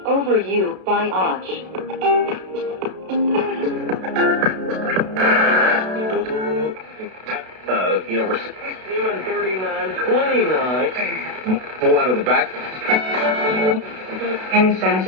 Over You by Och. We're 39, 29. Pull out of the back.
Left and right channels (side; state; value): left; late; 32 ms